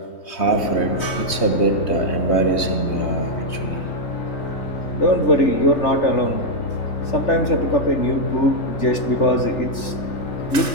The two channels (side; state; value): right; late; 3.2 ms